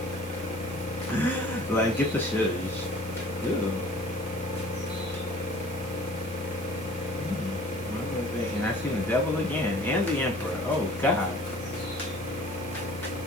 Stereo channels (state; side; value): noise; right; hiss, 16 dB below the sound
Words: Like, get the shush. Ooh. And I see the devil again. And the emperor. Oh, God.